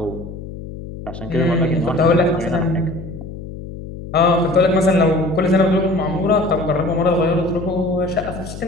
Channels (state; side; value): noise; left; hum, 11 dB below the sound